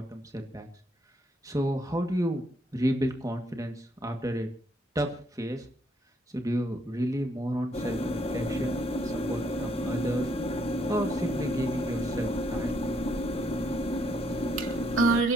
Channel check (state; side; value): normal; both; correlation 0.72